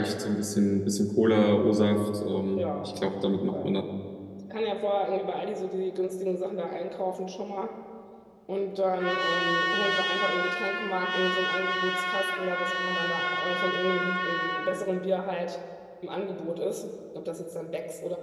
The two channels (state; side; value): identical; both; correlation 1.00